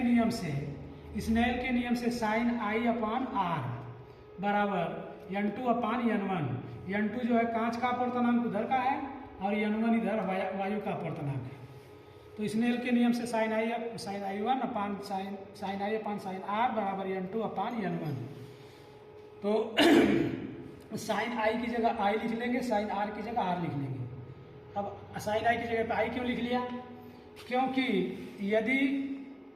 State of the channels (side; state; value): both; identical; correlation 1.00